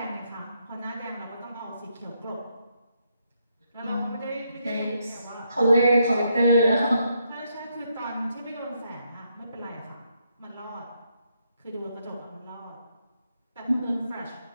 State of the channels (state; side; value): inverted; both; correlation -0.77